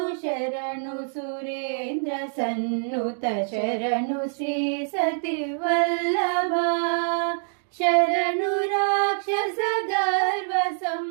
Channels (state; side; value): silent; left; digital silence